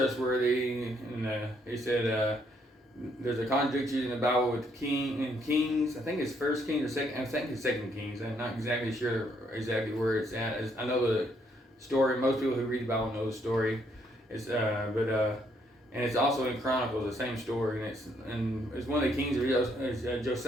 And he said there's a contradiction in the Bible with Kings. I think it's First Kings or Second. I think it's Second Kings. I'm not exactly sure exactly where it's at. I know the story. Most people who read the Bible know the story. And it's also in Chronicles, the same story, and it's one of the kings of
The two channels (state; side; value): normal; both; correlation 0.71